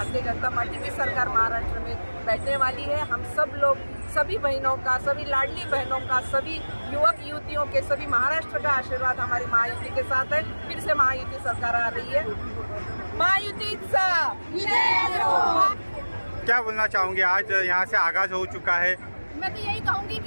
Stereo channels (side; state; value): both; inverted; correlation -1.00